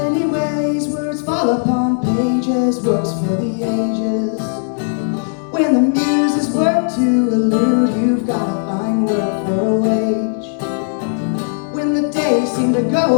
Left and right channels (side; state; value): right; silent; digital silence